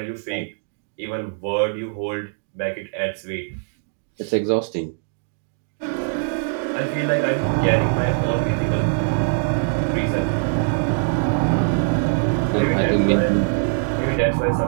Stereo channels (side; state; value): left; silent; digital silence